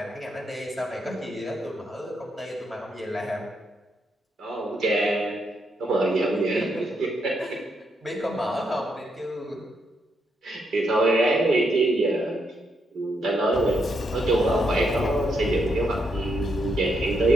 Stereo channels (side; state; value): both; normal; correlation 0.79